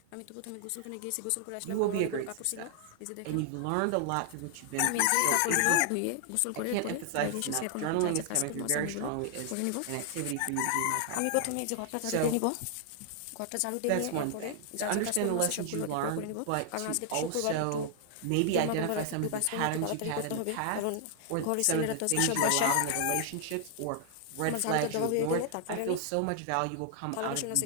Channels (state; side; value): different; both; correlation 0.00